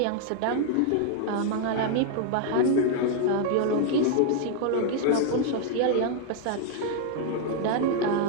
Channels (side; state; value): both; different; correlation 0.00